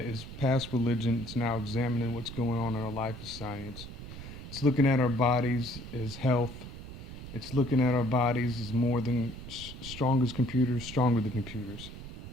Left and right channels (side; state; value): right; noise; rumble, 11 dB below the sound